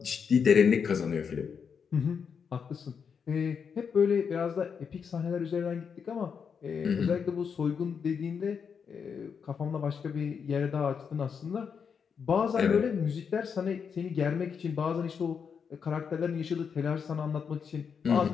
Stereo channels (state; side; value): quieter; right; 6.5 dB